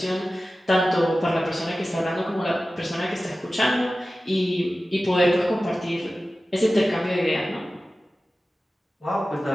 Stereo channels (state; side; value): normal; both; correlation 0.95